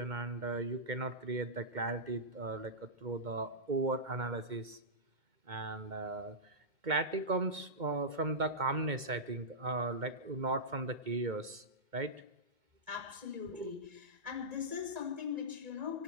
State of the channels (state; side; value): late; left; 2.2 ms